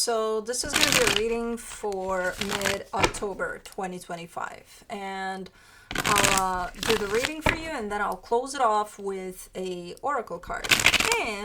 this is going to be a reading for mid-October 2025. And I'll do the reading for you and then I'll close it off with a oracle card.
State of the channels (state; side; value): identical; both; correlation 1.00